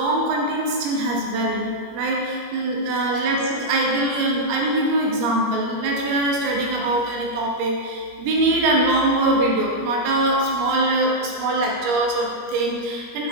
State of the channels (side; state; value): left; late; 21 ms